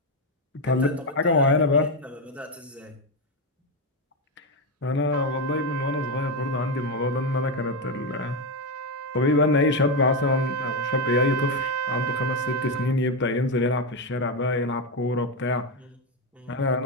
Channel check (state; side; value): normal; both; correlation 0.08